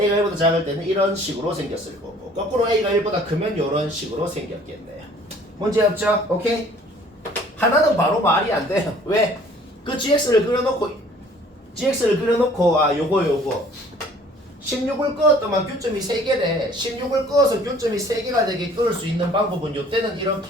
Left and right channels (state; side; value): normal; both; correlation 0.54